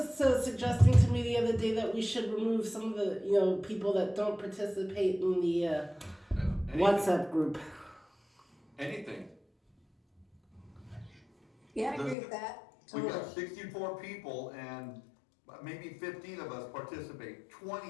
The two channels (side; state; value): right; drops out; at 12.2 s